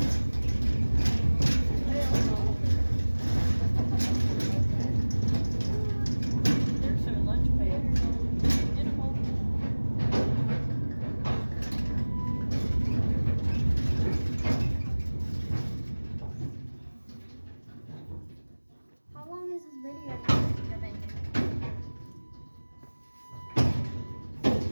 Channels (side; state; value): both; inverted; correlation -1.00